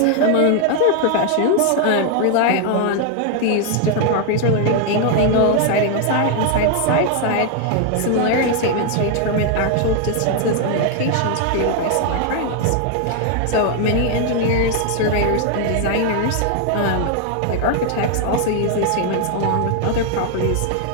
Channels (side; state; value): both; different; correlation 0.00